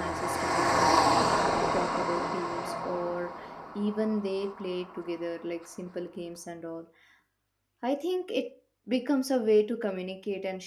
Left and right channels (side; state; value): both; identical; correlation 1.00